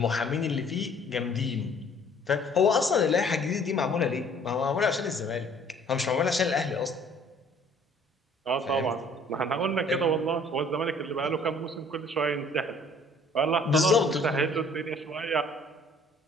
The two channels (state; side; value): normal; both; correlation 0.56